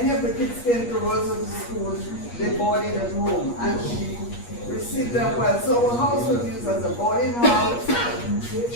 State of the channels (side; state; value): right; late; 8.4 ms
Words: of the kids came to Roseau to school. They boarded at home, and she received them well. So her house was used as a boarding house.